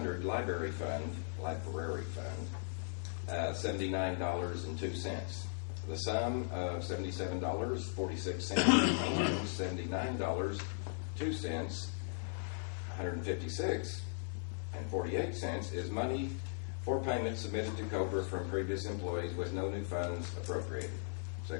Library Fund $79.02. The sum of $77.46, $79.02, $156.48 is money for payment submitted to COBRA from previous employees with no new funds appropriated.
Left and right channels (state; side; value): silent; right; 53 dB below the other